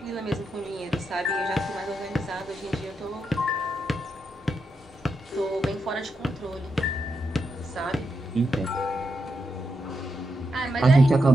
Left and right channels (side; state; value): both; normal; correlation 0.84